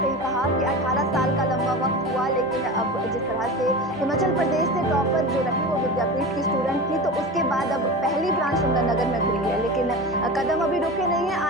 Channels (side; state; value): both; normal; correlation 0.29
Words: कहा कि 18 साल का लंबा वक्त हुआ, लेकिन अब जिस तरह से हिमाचल प्रदेश से टॉपर जो रही वो विद्यापीठ की स्टूडेंट थी, तो उसके बाद अब पहली ब्रांच सुंदरनगर में खुली है। लेकिन कदम अभी रुके नहीं है।